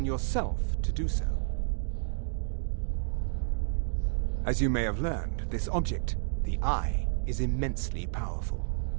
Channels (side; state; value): left; silent; digital silence